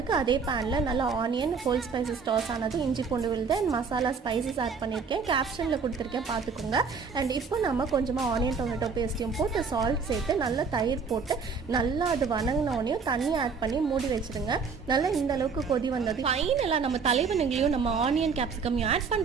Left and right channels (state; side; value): quieter; left; 5.4 dB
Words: அதே பேன்ல நல்லா ஆனியன், ஹோல் ஸ்பைசஸ் டாஸ் ஆனது, இஞ்சி பூண்டு விழுது அண்ட் மசாலா ஸ்பைசஸ் ஆட் பண்ணியிருக்கேன். கேப்ஷன்ல கொடுத்துருக்கேன், பார்த்துக்கோங்க. அண்ட் இப்போ நம்ம கொஞ்சமாக ஆனியன் டொமேட்டோ பேஸ்ட்டையும் போட்டு சால்ட் சேர்த்து நல்லா தயிர் போட்டு நல்லா அது வணங்கினோடனையும் தண்ணி ஆட் பண்ணி மூடி வச்சுருங்க. நல்லா இந்த அளவுக்கு கொதி வந்தது ஃபைனலாக நம்ம தலைவனுங்களையும் நம்ம ஆனியன் கேப்சிகமையும் ஆட்